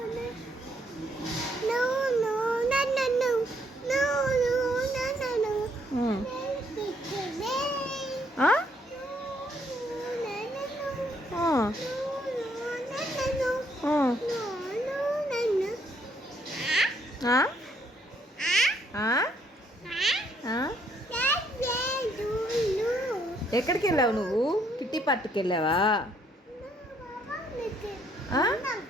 ఎక్కడికి వెళ్ళావు నువ్వు కిట్టి పార్టీకి వెళ్ళావా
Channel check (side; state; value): both; normal; correlation 0.70